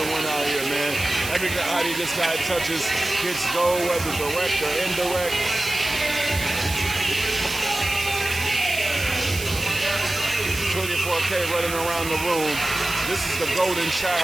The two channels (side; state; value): right; noise; hiss, 8 dB below the sound